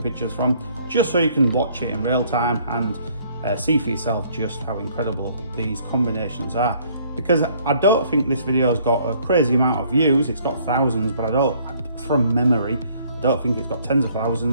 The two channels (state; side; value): inverted; both; correlation -0.62